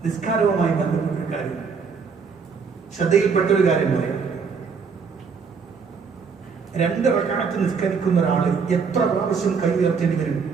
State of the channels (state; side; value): quieter; left; 5.6 dB